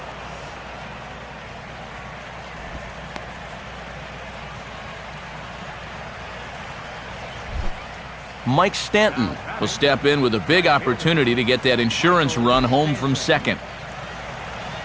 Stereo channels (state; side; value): identical; both; correlation 1.00